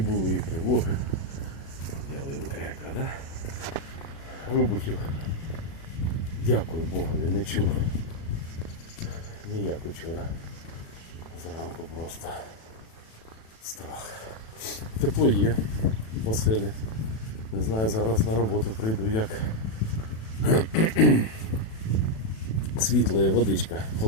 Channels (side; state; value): right; late; 36 ms